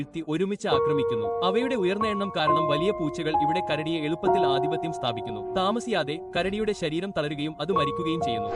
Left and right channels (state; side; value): identical; both; correlation 1.00